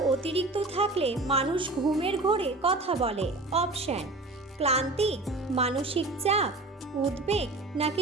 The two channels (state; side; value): quieter; left; 3.0 dB